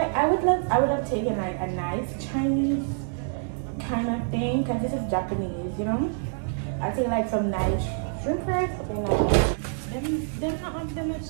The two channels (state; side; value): silent; left; digital silence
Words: would have taken like a nice Chinese kind of thing, because this is Japanese, I take like some nice shrimp fries, something like that. Them not have them much